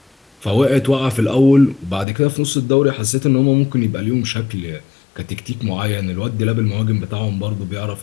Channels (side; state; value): right; drops out; at 2.1 s